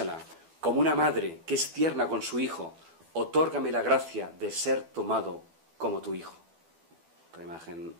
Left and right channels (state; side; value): late; left; 12 ms